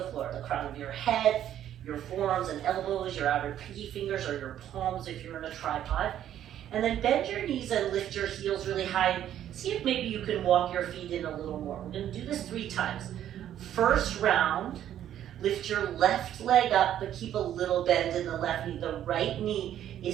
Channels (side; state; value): left; quieter; 11.1 dB